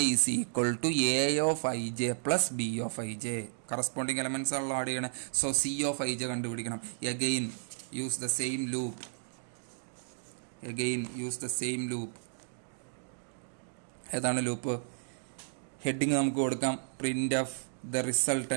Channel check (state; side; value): silent; left; digital silence